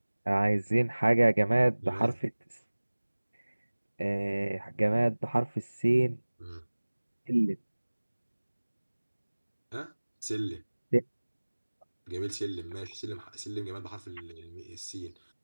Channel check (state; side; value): inverted; both; correlation -1.00